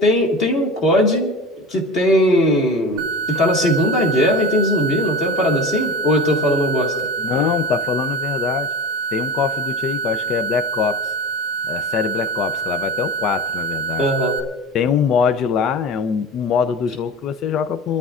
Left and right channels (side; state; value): both; normal; correlation 0.32